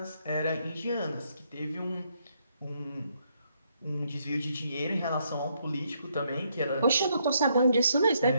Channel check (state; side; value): inverted; both; correlation -0.74